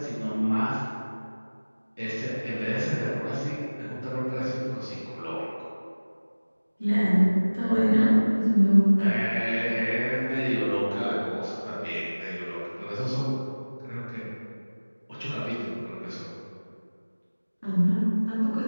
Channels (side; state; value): both; inverted; correlation -1.00